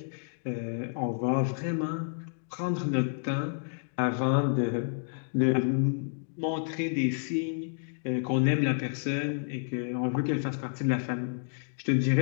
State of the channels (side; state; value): right; silent; digital silence